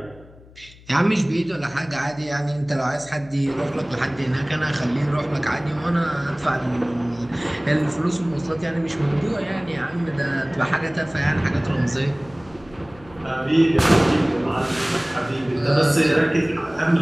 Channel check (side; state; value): left; noise; hum, 23 dB below the sound